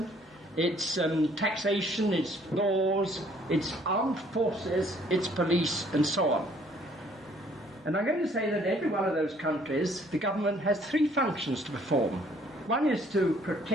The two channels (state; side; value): normal; both; correlation 0.61